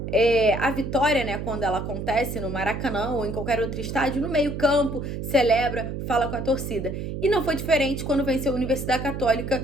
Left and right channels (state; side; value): noise; right; hum, 5 dB below the sound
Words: a vitória, né, quando ela acontece no Maracanã ou em qualquer outro estádio, no meio-campo, celebra, fala com a torcida. E não foi diferente quando venceu a Universidade Católica